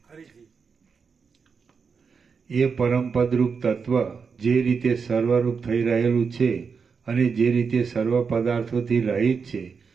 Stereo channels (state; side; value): quieter; left; 5.6 dB